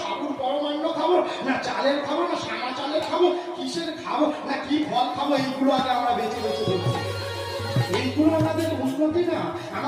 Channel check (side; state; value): both; identical; correlation 1.00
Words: সাবুর পরমান্ন খাবো, না চালের খাবো, না সাদা চালের খাবো, কিসের খাবো, না কি ফল খাবো, এইগুলো আগে আমরা বেছে বেছে দেখছি। এইগুলো আমাদের উন্নতি না,